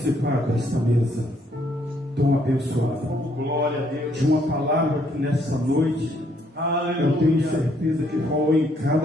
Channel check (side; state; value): both; normal; correlation 0.69